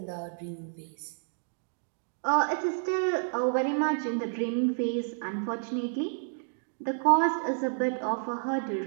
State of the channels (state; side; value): silent; left; digital silence